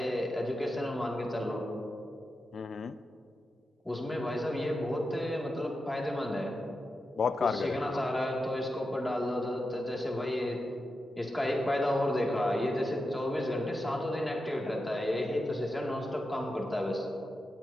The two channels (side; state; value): both; normal; correlation 0.89